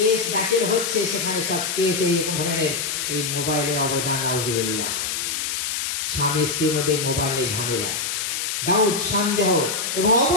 দাখিল হচ্ছে, সেখানে সব কেস এই ধরনের এই মোবাইলের অবদান। নাউজুবিল্লাহ। স্বামী স্ত্রীর মধ্যে মোবাইলের ঝামেলা, ডাউট, সন্দেহ এবং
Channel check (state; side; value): noise; left; hiss, 2 dB below the sound